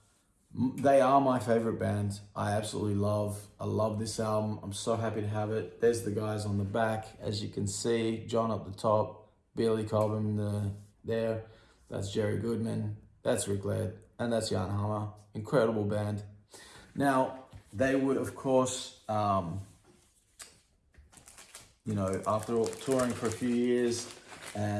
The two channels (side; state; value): both; identical; correlation 1.00